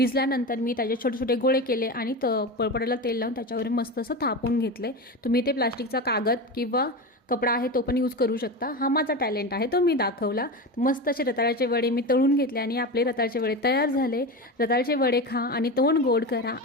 मी त्याचे छोटे छोटे गोळे केले आणि पळपटाला तेल लावून त्याच्यावर मस्त असं थापून घेतले. तुम्ही ते प्लास्टिकचा कागद किंवा कपडा आहे तो पण यूज करू शकता. हा माझा टॅलेंट आहे, तो मी दाखवला. मस्त असे रताळ्याचे वडे मी तळून घेतले आणि आपले रताळ्याचे वडे तयार झाले. रताळ्याचे वडे खा आणि तोंड गोड करा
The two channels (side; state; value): both; normal; correlation 0.23